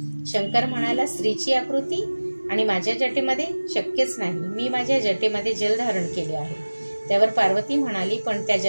शंकर म्हणाला, स्त्रीची आकृती? आणि माझ्या जटेमध्ये? शक्यच नाही, मी माझ्या जटेमध्ये जल धारण केले आहे. त्यावर पार्वती म्हणाली, पण त्या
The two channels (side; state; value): both; inverted; correlation -1.00